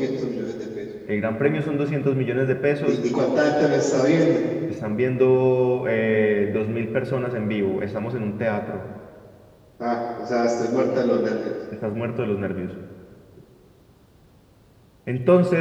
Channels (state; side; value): identical; both; correlation 1.00